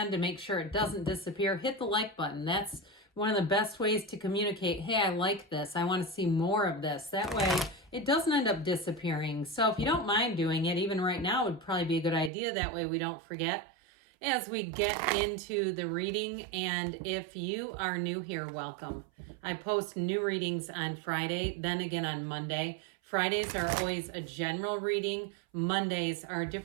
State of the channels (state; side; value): drops out; left; at 12.3 s